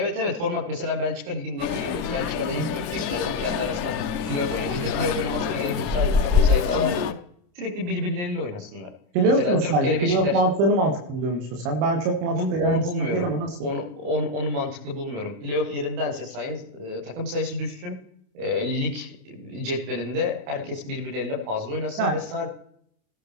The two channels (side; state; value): left; late; 28 ms